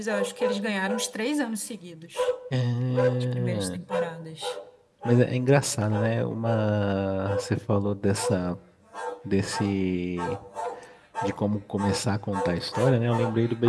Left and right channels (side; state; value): both; identical; correlation 1.00